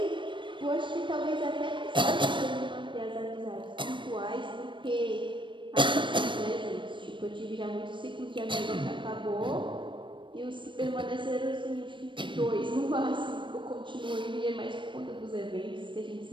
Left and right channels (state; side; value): late; left; 0.24 ms